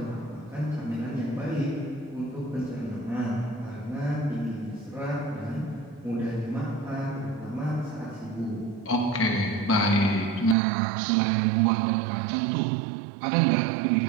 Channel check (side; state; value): left; drops out; at 10.6 s